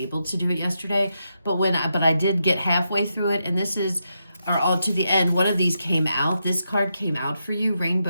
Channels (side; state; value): both; inverted; correlation -0.84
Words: to do it yesterday. But I did get halfway through it, and all to the end, one of these came out. This card came out for you,